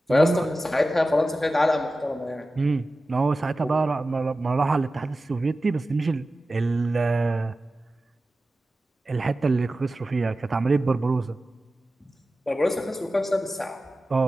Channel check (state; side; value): normal; both; correlation 0.94